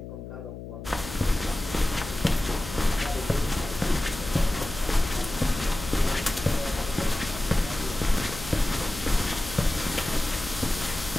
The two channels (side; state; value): left; noise; hum, 11 dB below the sound